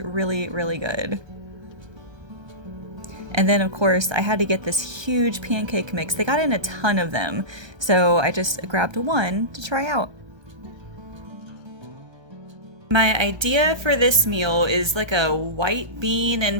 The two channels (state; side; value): late; left; 1.3 ms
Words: really good. And then of course I had to get this huge pancake mix. They got in a ton of them, so I just grabbed 1 to try out. My idea for this meal is like a white bean